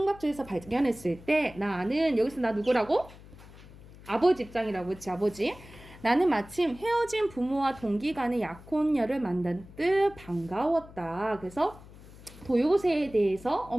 발견했을 때 나는 여기서 나 누구라고? 아버지 입장이라고 했지. 아버지. 나는 마침 헤어진 부모와 동기 간의 약혼녀를 만난 듯 반가웠다. 그래서 도요새에 대해서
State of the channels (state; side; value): noise; left; hum, 19 dB below the sound